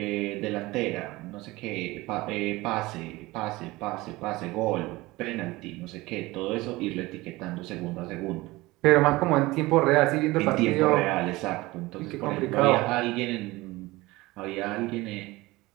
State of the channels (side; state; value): left; quieter; 20.5 dB